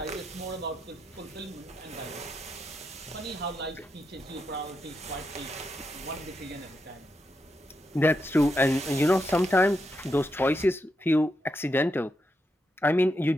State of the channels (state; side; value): normal; both; correlation 0.84